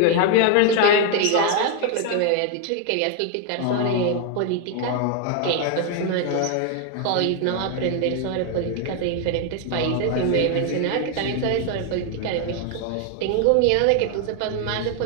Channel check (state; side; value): different; both; correlation 0.01